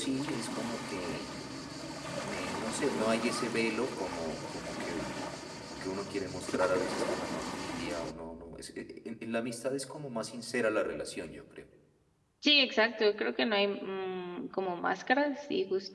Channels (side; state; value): both; identical; correlation 1.00